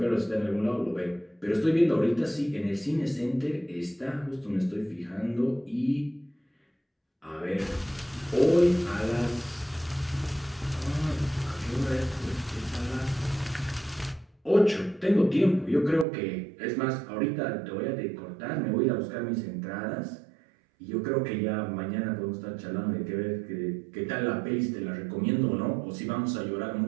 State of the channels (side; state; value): left; drops out; at 16.1 s